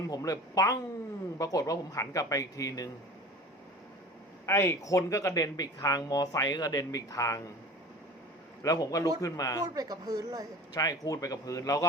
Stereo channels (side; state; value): both; normal; correlation 0.39